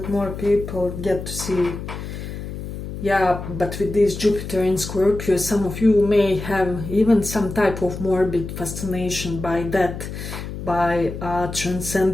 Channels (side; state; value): left; noise; hum, 8 dB below the sound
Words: more people get to see. Yeah, but with this Jupiter in Scorpio, some of you may have even some type of morbid fascination by death, by